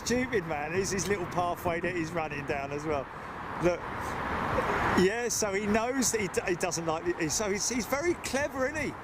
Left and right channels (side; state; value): both; identical; correlation 1.00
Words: man. There's his little pathway that he's running down as well. Look, yeah. So he knows that he doesn't like it. So he's very clever, isn't he?